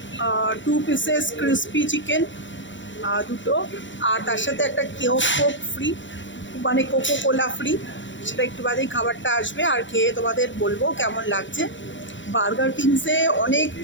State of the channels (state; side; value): late; right; 0.54 ms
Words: 2 পিসেস ক্রিসপি চিকেন, দুটো, আর তার সাথে একটা কোক ফ্রি, মানে কোকো কোলা ফ্রি। সেটা একটু বাদেই খাবারটা আসবে, আর খেয়ে তোমাদের বলবো কেমন লাগছে। বার্গার কিংসে অনেক